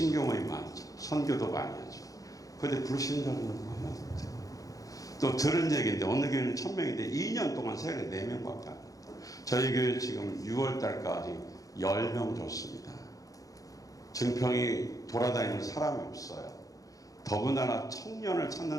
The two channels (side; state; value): right; late; 0.17 ms